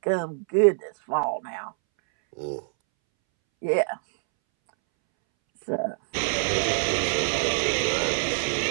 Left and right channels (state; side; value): silent; left; 62 dB below the other